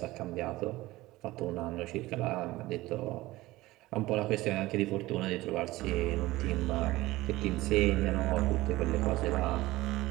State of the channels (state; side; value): quieter; left; 18.4 dB